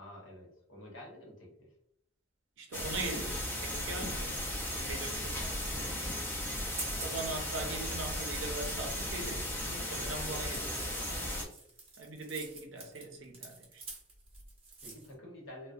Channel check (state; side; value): normal; both; correlation 0.24